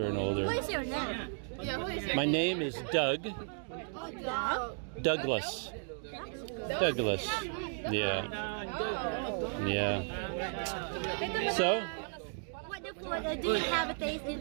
and older. What is your name? Yeah, who is My name is Doug. Dog? Douglas. Douglas. Yeah. Yeah. So, What the food do you have a taste in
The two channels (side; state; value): left; silent; 55 dB below the other